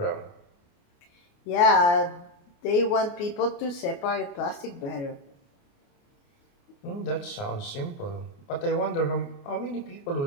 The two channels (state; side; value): late; right; 29 ms